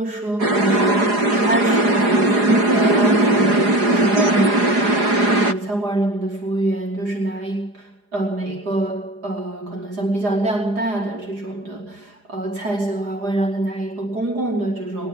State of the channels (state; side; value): late; left; 4.9 ms